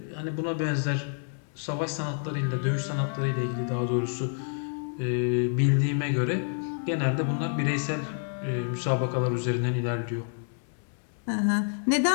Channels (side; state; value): right; silent; 57 dB below the other